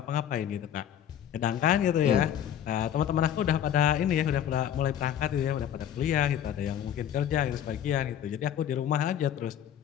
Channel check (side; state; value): right; quieter; 10.0 dB